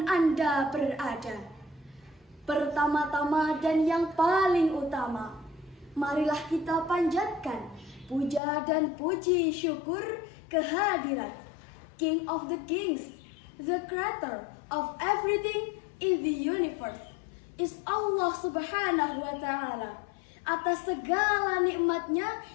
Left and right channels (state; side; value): drops out; right; at 8.4 s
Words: Anda berada. Pertama-tama dan yang paling utama, marilah kita panjatkan puja dan puji syukur kehadirat King of the Kings, the creator of everything in the universe, is Allah Subhanahu wa Ta'ala, atas segala nikmatnya